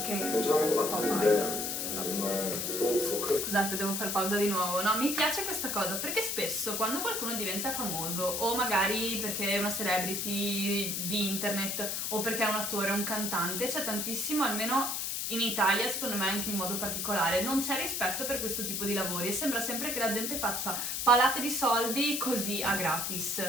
괜찮을 것 K-pop 같은데 idol. 정말 또 큰. Scusate, devo fare pausa di nuovo. No, mi piace questa cosa perché spesso quando qualcuno diventa famoso, o magari perché è una celebrity di internet, o perché è un attore, un cantante, c'è tantissimo, almeno in Italia, secondo me anche in modo particolare, non c'è rispetto per questo tipo di lavori e sembra sempre che la gente faccia palate di soldi così a gratis,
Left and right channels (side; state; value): left; noise; hiss, 1 dB below the sound